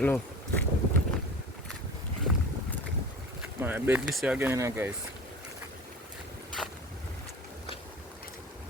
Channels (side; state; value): both; normal; correlation 0.37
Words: My bed this year again, you know, guys.